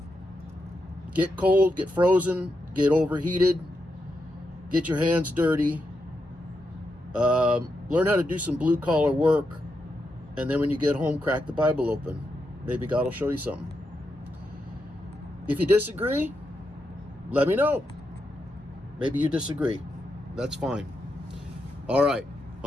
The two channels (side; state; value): both; normal; correlation 0.85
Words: get cold, get frozen, get overheated, get your hands dirty, learn how to do some blue-collar work, and then when you get home, crack the Bible open. Maybe God will show you something. If you disagree, let me know. Maybe you disagree. That's fine. All right,